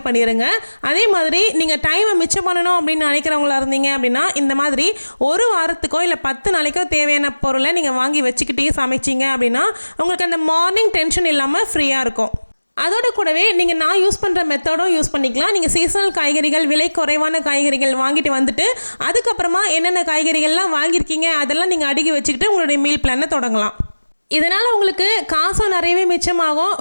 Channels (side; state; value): both; inverted; correlation -1.00